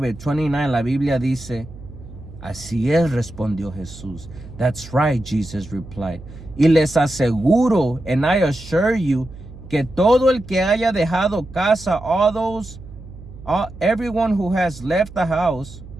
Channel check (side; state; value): right; noise; hum, 16 dB below the sound